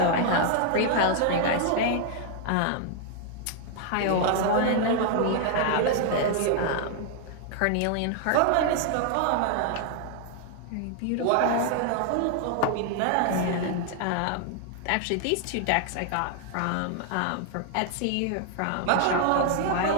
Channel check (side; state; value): both; different; correlation 0.00